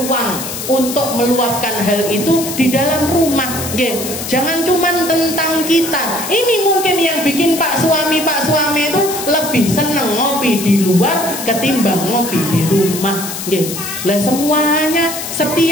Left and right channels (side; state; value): left; noise; hiss, 7 dB below the sound